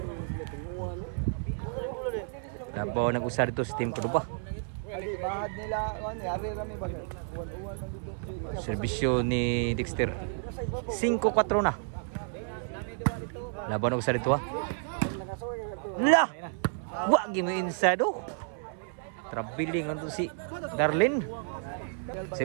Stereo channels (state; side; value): silent; left; 57 dB below the other